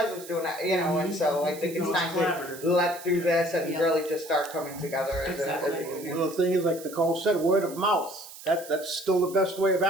is doing that," And so I think it's time to let through this and really just start coming together as a union. Well, the thing is, like Nicole said, word of mouth. That's still the best way of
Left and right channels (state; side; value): noise; right; hiss, 16 dB below the sound